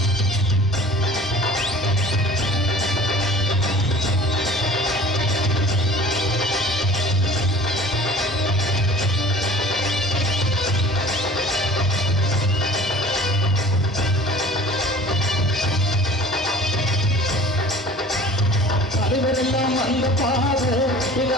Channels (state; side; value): normal; both; correlation 0.45